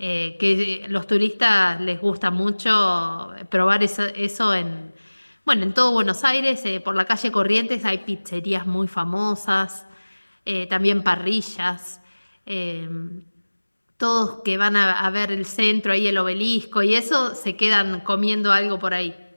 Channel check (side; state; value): both; inverted; correlation -1.00